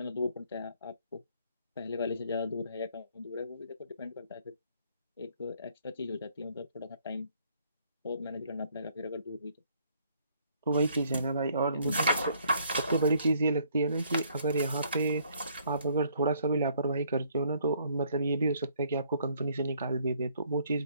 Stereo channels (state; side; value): inverted; both; correlation -0.64